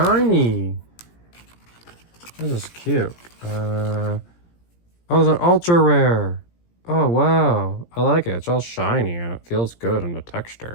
This is cute. Oh, it's an ultra rare. Oh, wow. I like it. It's all shiny and it feels good in the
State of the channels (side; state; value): right; late; 17 ms